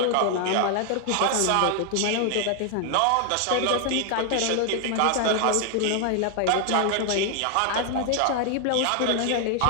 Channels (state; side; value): different; both; correlation 0.00